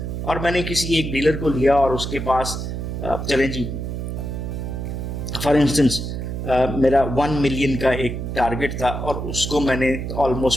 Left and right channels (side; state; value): right; noise; hum, 4 dB below the sound